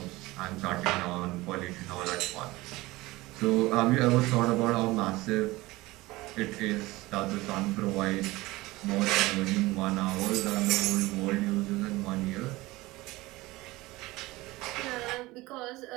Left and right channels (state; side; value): quieter; left; 20.0 dB